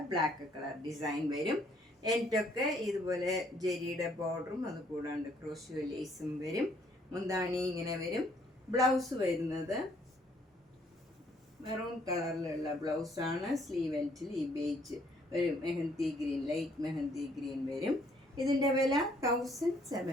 ബ്ലാക്ക് കളർ ഡിസൈൻ വരും. എൻഡൊക്കെ ഇതുപോലെ ജെരിയുടെ ബോർഡറും അതുകൂടാണ്ട് ക്രോഷ്യോ ലേസും വരും. മുന്താണി ഇങ്ങനെ വരും. ബ്ലൗസ് വരുന്നത് മെറൂൺ കളറിലുള്ള ബ്ലൗസാണ്. സ്ലീവ് എൻഡിൽ ഈ ബേജ് ഒരു mehndi green, light mehndi green വരും. ഇതിൻ്റെ വില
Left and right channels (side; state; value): both; normal; correlation 0.65